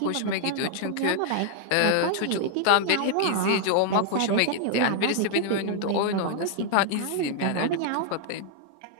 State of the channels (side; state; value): both; different; correlation 0.00